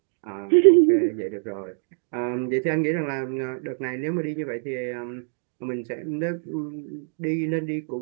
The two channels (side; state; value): left; silent; 62 dB below the other